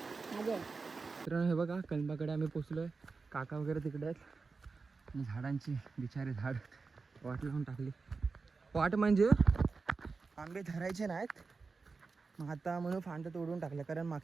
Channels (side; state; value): left; quieter; 4.4 dB